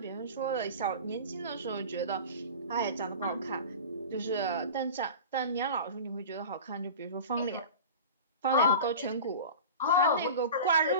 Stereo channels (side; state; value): both; inverted; correlation -0.34